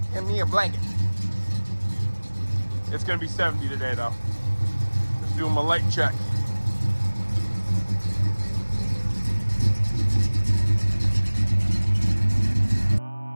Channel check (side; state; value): both; inverted; correlation -1.00